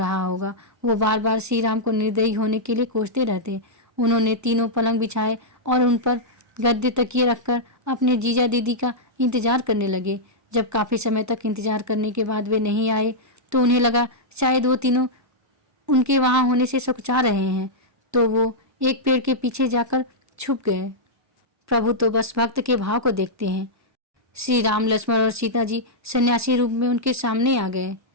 होगा। वो बार बार श्री राम को निर्दयी होने के लिए कोसते रहते। उन्होंने 3 पलंग बिछाए और उन पर गद्दे तकिए रखकर अपने जीजा दीदी का इंतजार करने लगे। जब काफ़ी समय तक इंतजार करने के बाद वे नहीं आए तो उन्हें लगा शायद वो तीनों उनके वहाँ होने से सकुचा रहे हैं, तो वो एक पेड़ के पीछे जाकर छुप गए। प्रभु तो बस भक्त के भाव को देखते हैं। श्री राम, लक्ष्मण और सीता जी सन्यासी रूप में उनके सामने आ गए।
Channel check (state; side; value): normal; both; correlation -0.08